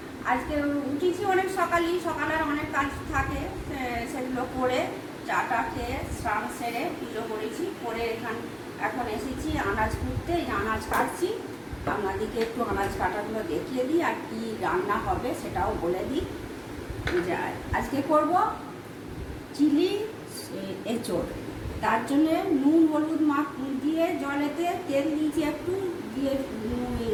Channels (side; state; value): both; identical; correlation 1.00